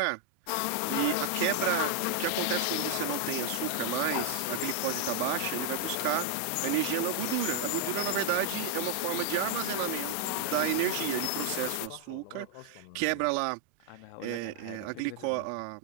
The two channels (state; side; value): different; both; correlation 0.00